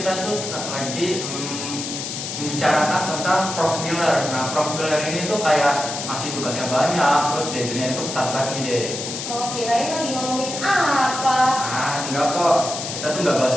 tuh lagi membicarakan tentang Prof. Miller. Nah, Prof. Miller ini tuh kayak masih tugasnya banyak, terus deadline-nya itu ketat banget nih deh. Oh, kirain lagi ngomongin apa? Ah, enggak kok. Kita tuh nggak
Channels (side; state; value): left; noise; hiss, 6 dB below the sound